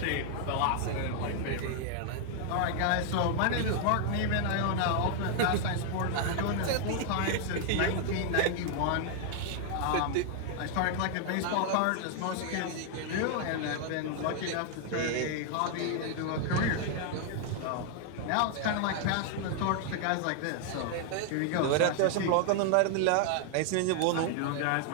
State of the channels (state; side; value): different; both; correlation 0.00